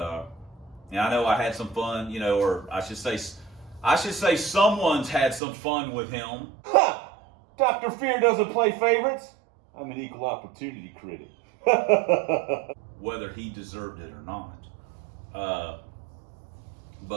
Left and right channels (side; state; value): left; drops out; at 5.4 s